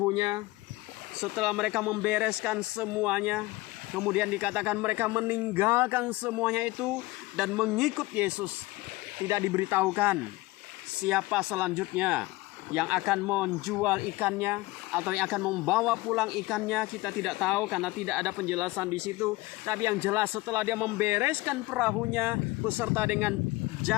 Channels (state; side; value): quieter; right; 20.7 dB